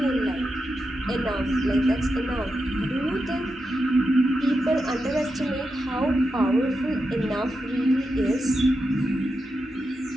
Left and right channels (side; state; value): both; normal; correlation 0.87